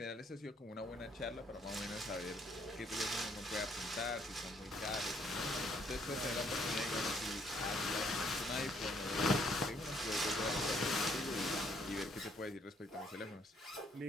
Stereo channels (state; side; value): normal; both; correlation 0.67